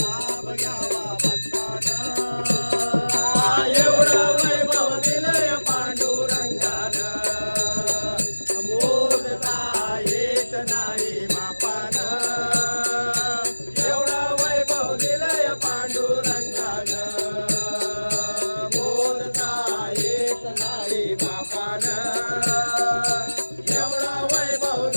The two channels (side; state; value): both; inverted; correlation -1.00